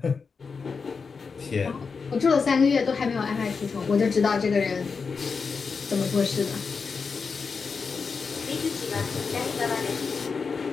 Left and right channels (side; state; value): right; quieter; 5.1 dB